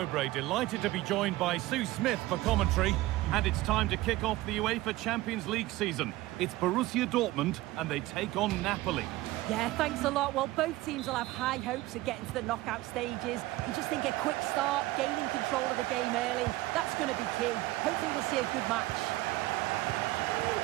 delighted to be joined by Sue Smith for commentary. And it's time to kick off the UEFA Champions League season. It's Borussia Dortmund and they take on Napoli. Yeah, thanks a lot. Well, both teams will have high hopes of getting to the knockout stages. You just think a quick start, gaining control of the game early, that's going to be key. Hopefully we'll see a good match.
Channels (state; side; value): quieter; left; 17.9 dB